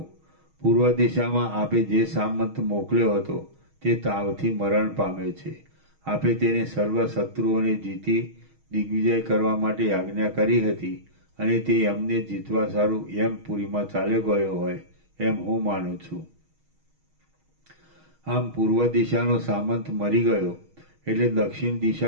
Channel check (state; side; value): late; left; 6.3 ms